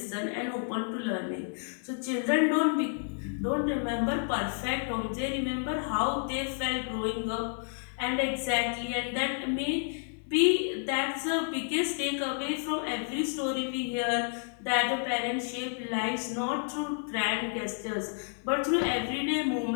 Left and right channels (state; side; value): silent; right; 58 dB below the other